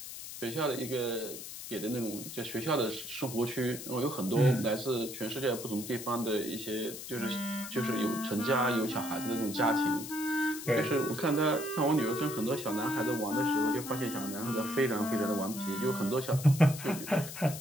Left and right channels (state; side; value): noise; left; hiss, 10 dB below the sound